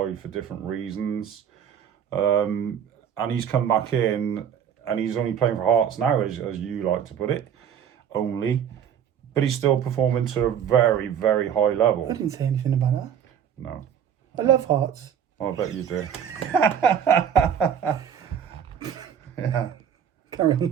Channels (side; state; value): left; quieter; 8.6 dB